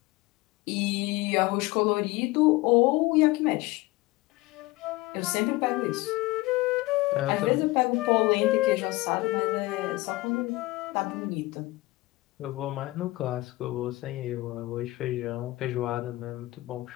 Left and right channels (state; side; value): quieter; right; 20.3 dB